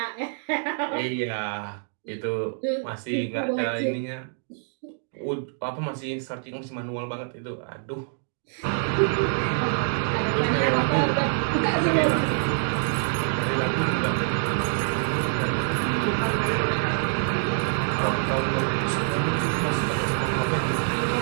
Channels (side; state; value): left; silent; digital silence